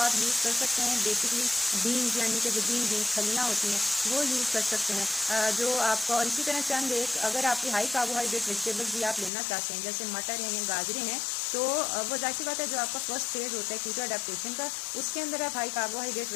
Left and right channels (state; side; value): drops out; right; at 9.3 s